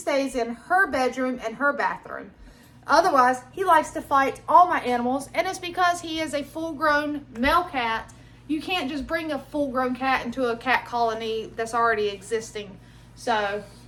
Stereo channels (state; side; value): identical; both; correlation 1.00